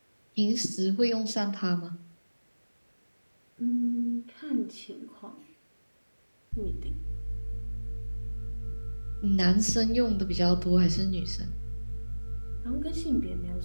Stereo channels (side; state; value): both; inverted; correlation -1.00